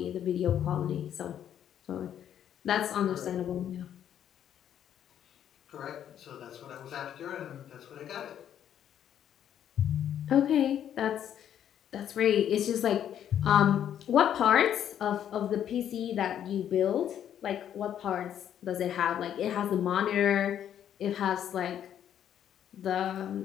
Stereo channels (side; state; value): right; quieter; 10.0 dB